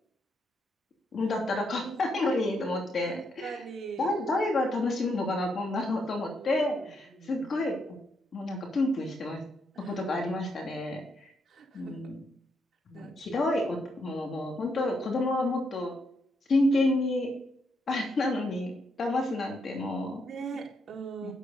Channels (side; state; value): both; normal; correlation 0.78